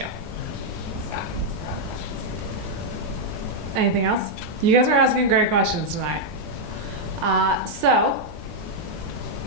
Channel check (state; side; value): normal; both; correlation -0.03